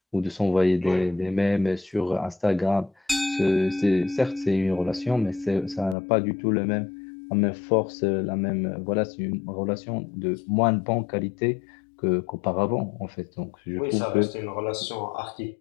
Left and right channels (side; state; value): right; drops out; at 6.0 s